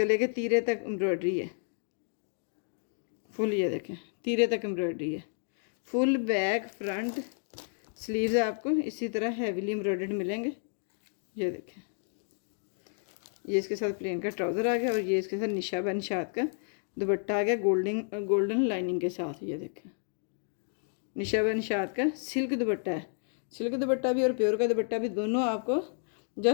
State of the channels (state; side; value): silent; right; 57 dB below the other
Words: के तीरे तक एम्ब्रॉयडरी है फुल, ये देखें तीरे तक एम्ब्रॉयडरी है फुल। बैक फ्रंट स्लीव्स आपको इसी तरह हैवीली एम्ब्रॉयडर्ड मिलेंगे। ये देखें, ये इसके साथ प्लेन का ट्राउज़र आ गया और ये इसके साथ निशा व निशात का दुपट्टा आ गया गोल्डन लाइनिंग के साथ। ये देखें निशा व निशात का सिल्क दुपट्टा है, सिल्क दुपट्टा भी और प्योर का दुपट्टा भी दोनों आपको